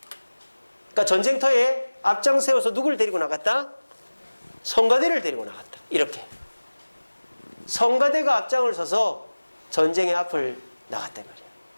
그러니까 전쟁터에 앞장세워서 누구를 데리고 나갔다? 성가대를 데리고 나갔다. 이렇게 성가대가 앞장을 서서 전쟁의 앞을 나갔단 말이에요.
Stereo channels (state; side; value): inverted; both; correlation -1.00